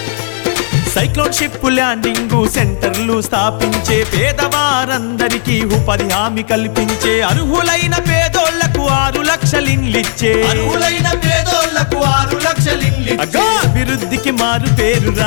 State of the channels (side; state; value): right; silent; digital silence